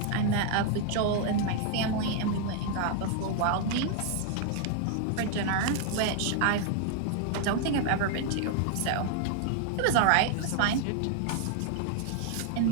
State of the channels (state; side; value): different; both; correlation 0.00